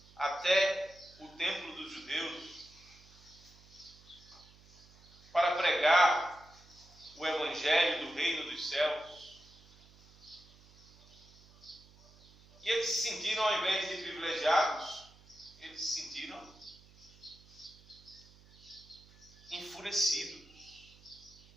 até o templo dos judeus para pregar o evangelho do reino dos céus. E eles se sentiram, ao invés de privilegiados, eles se sentiram enfurecidos.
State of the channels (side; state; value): right; noise; hum, 25 dB below the sound